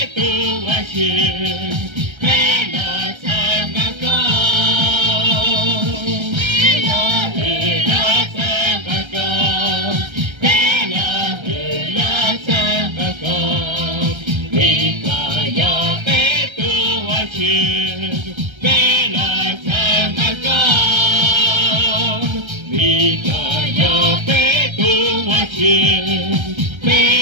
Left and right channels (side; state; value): left; late; 1.3 ms